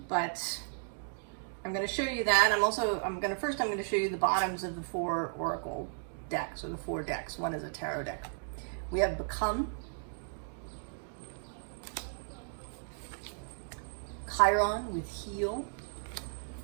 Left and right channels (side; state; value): left; silent; digital silence